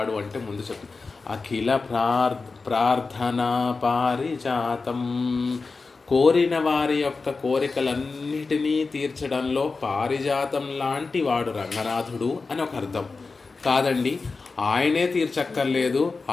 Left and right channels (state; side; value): quieter; right; 4.2 dB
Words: అంటే ముందు చెప్తుంది అఖిల ప్రార్థనా పారిజాతం. కోరిన వారి యొక్క కోరికలన్నిటినీ తీర్చడంలో పారిజాతం లాంటి వాడు రంగనాథుడు అని ఒక అర్థం కాదండి. ఆయనే తీర్చక్కర్లేదు,